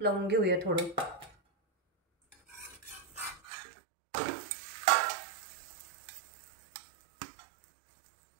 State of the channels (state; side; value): drops out; left; at 3.4 s